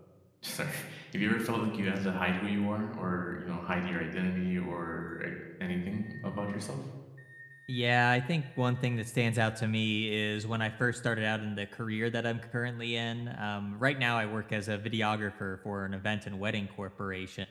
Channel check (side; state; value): both; identical; correlation 1.00